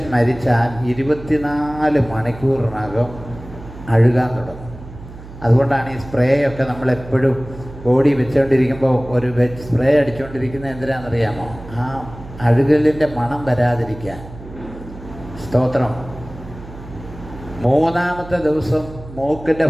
മരിച്ചാൽ 24 മണിക്കൂറിനകം അഴുകാൻ തുടങ്ങും. അതുകൊണ്ടാണ് ഈ സ്പ്രേയൊക്കെ നമ്മളെപ്പോഴും ബോഡി വെച്ചുകൊണ്ടിരിക്കുമ്പോൾ ഒരു സ്പ്രേ അടിച്ചുകൊണ്ടിരിക്കുന്നത് എന്തിനാണെന്നറിയാമോ? ആ അഴുകലിൻ്റെ മണം വരാതിരിക്കാൻ. സ്തോത്രം. മൂന്നാമത്തെ ദിവസം മൂക്കിൻ്റെ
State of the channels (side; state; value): right; noise; hum, 15 dB below the sound